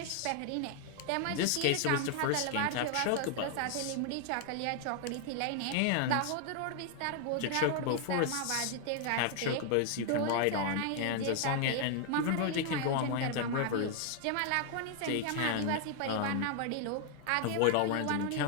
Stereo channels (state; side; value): different; both; correlation 0.00